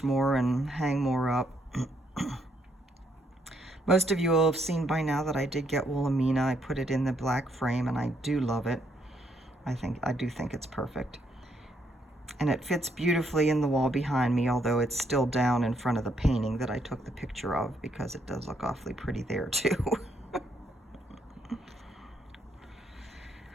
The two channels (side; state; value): both; normal; correlation 0.73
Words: more and hang more up. Most of you will have seen by now that I did get Wilhelmina. I put it in the black frame, and I do love it. I do think it's perfect. And it fits beautifully in the wall behind me, although it's still down in front of the painting that I took the picture of, because it does look awfully pretty there too.